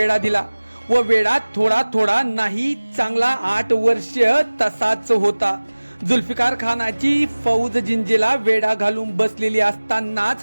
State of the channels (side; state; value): both; inverted; correlation -1.00